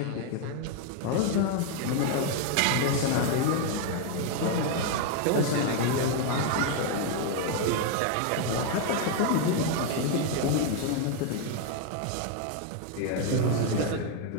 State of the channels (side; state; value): both; different; correlation 0.01